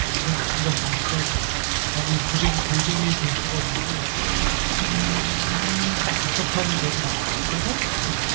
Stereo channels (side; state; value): left; silent; digital silence